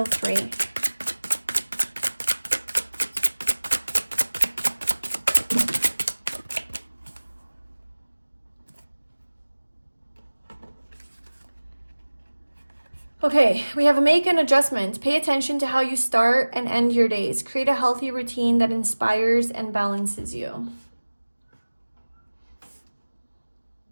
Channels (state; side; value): inverted; both; correlation -1.00